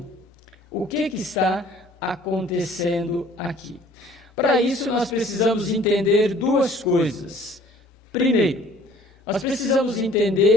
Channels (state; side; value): normal; both; correlation 0.54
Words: O que está acontecendo aqui? Para isso, nós precisamos entender duas coisas. Primeiro, nós precisamos